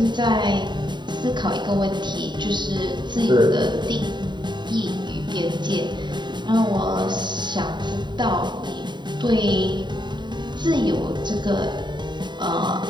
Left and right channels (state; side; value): late; left; 0.22 ms